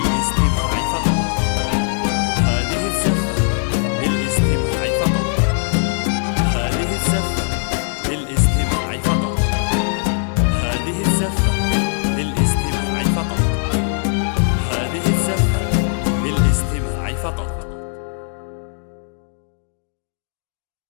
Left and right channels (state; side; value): silent; right; 56 dB below the other